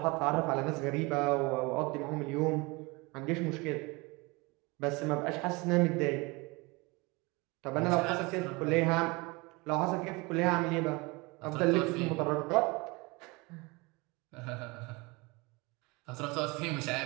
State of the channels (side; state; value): left; quieter; 25.7 dB